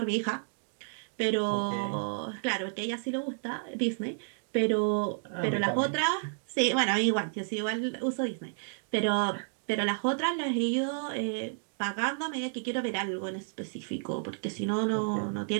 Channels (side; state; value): left; silent; digital silence